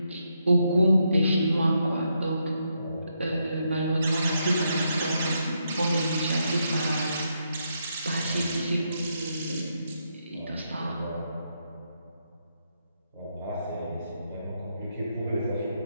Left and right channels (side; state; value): both; inverted; correlation -0.80